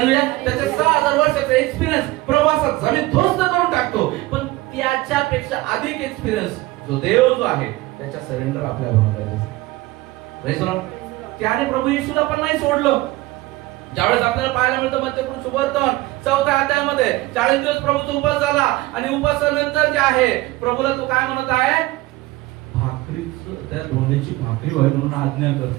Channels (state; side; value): quieter; left; 19.2 dB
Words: त्याचे 6000 वर्षाचा एक्सपिरियन्स प्रवासात जमीन ध्वस्त करून टाकतो. पण त्याच्यापेक्षा अधिक एक्सपिरियन्स जो देव जो आहे, त्याच्या सरेंडर आपल्या बनवलेला. त्याने प्रभू येशूला पण नाही सोडलं. ज्यावेळेस आपल्याला पाहायला मिळतं मध्यपुरुष सुवर्तन 4थ्या अध्यायामध्ये 40 दिवस प्रभूचा उपास झाला आणि उपासानंतर जे आहे, प्रभूला तो काय म्हणत आहे, भाकरीचं, त्या धोंड्याची भाकरी व्हावी म्हणून आज्ञा कर.